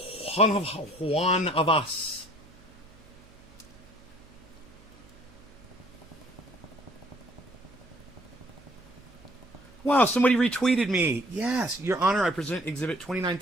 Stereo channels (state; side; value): noise; right; hum, 25 dB below the sound